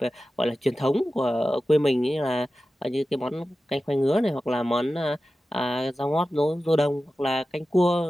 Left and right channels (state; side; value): normal; both; correlation 0.94